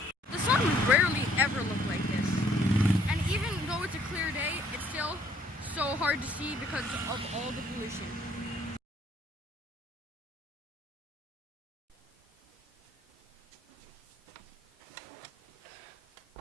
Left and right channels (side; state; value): both; normal; correlation 0.64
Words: The sun would rarely ever look like this, and even though it's a clear day, it's still so hard to see because of all the pollution.